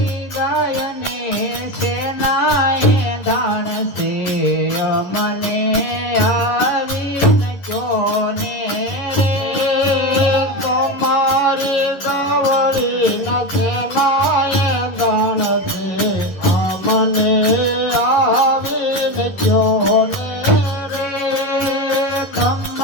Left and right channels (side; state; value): right; late; 11 ms